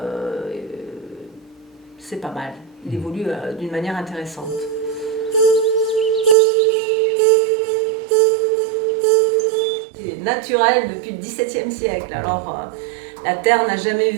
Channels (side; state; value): left; drops out; at 6.4 s